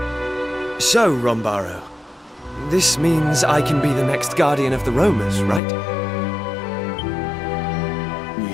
So, Rombaro, this means I can be the next guardian of the Romas, right?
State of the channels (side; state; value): right; drops out; at 5.6 s